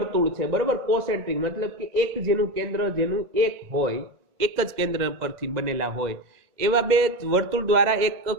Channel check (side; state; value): left; late; 2.0 ms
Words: છે બરોબર, કોસેન્ટ્રિક મતલબ કે એક જેનું કેન્દ્ર જેનું એક હોય, એક જ કેન્દ્ર પરથી બનેલા હોય એવા બે વર્તુળ દ્વારા એક